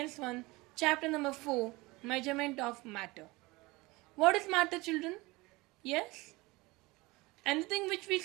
1 chapter number 4 measurement of matter. What is matter children? Yes? Anything which we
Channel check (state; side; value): quieter; left; 22.4 dB